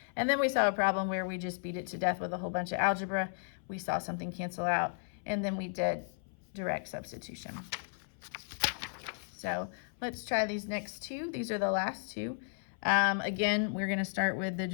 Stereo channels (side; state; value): right; silent; 55 dB below the other